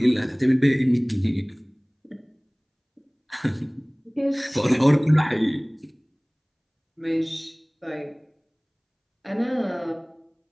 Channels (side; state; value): both; identical; correlation 1.00